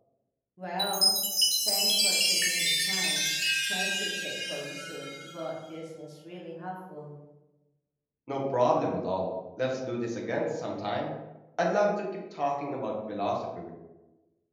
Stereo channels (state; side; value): identical; both; correlation 1.00